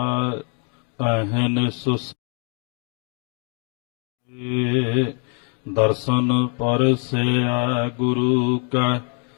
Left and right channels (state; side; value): quieter; right; 39.4 dB